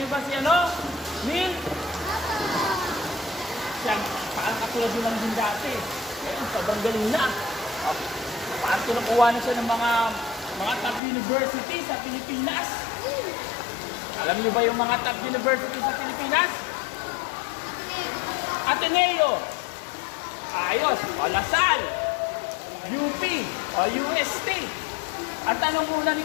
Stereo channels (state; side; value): drops out; right; at 11.0 s